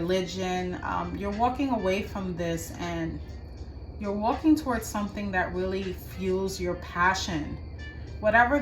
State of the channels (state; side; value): identical; both; correlation 1.00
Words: You're walking away from this and you're walking towards something that really fuels your passion. Whatever